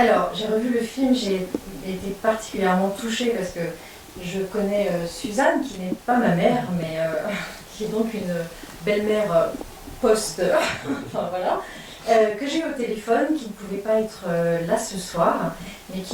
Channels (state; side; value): identical; both; correlation 1.00